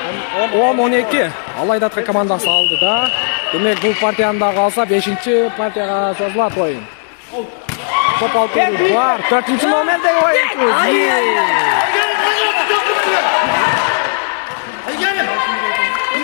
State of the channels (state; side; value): silent; right; digital silence